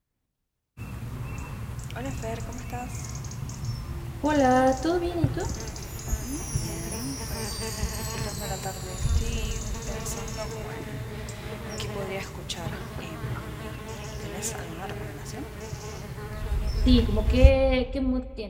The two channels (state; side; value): identical; both; correlation 1.00